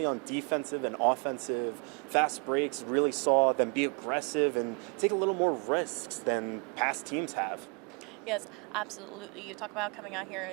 on defensive and offensive. Fast breaks, really saw them be aggressive and take a little more risks than past teams have. Yes, absolutely. You talk about coming out here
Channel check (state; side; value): quieter; left; 34.1 dB